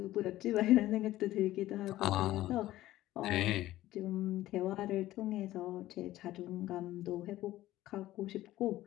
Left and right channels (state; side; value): quieter; right; 15.3 dB